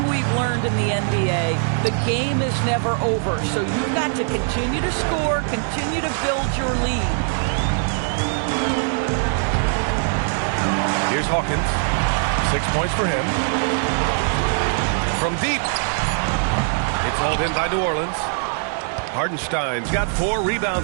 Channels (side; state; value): left; silent; digital silence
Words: we've learned in the NBA, the game is never over. So you've got to continue to score, continue to build your lead. Here's Hawkins. 6 points for him. From deep. It's hauled in by New Orleans. Hardenstein's got 4